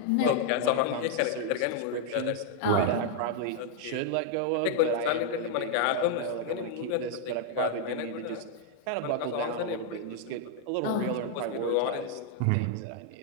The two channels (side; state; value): both; different; correlation 0.00